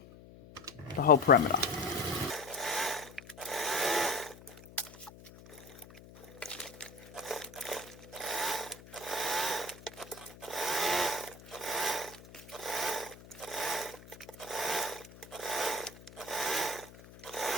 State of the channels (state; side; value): noise; left; hum, 19 dB below the sound